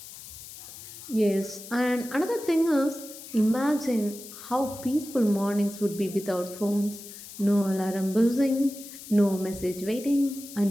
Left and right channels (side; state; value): left; noise; hiss, 15 dB below the sound